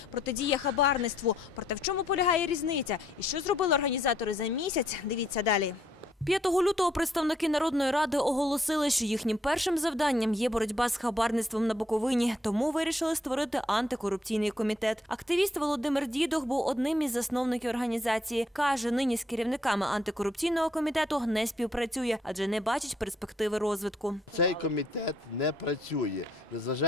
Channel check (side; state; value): both; normal; correlation 0.70